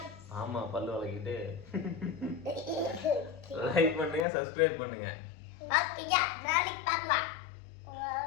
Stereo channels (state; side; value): drops out; right; at 4.2 s